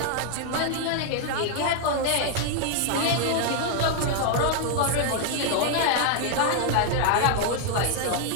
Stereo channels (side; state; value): both; different; correlation 0.00